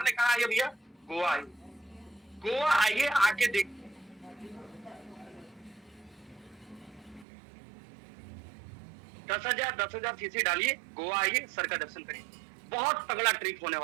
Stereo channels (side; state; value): left; drops out; at 7.2 s